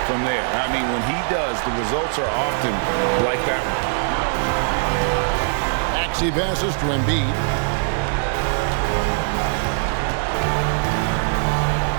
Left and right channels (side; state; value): left; silent; digital silence